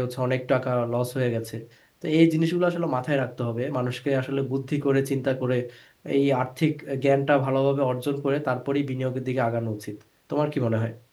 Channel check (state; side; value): identical; both; correlation 1.00